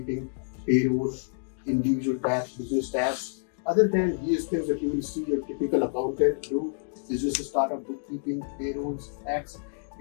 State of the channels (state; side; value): silent; right; digital silence